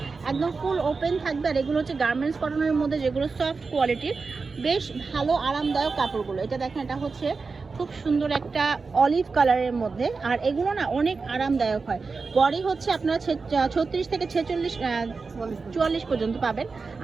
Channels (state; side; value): quieter; left; 4.5 dB